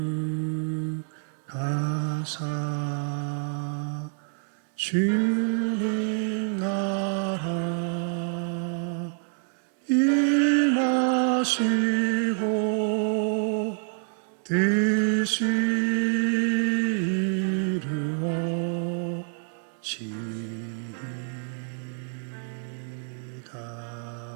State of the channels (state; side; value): silent; left; 60 dB below the other